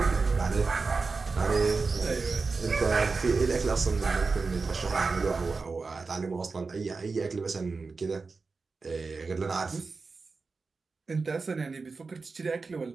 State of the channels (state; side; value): quieter; left; 4.3 dB